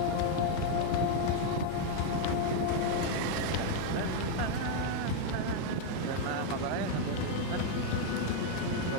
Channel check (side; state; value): both; different; correlation 0.00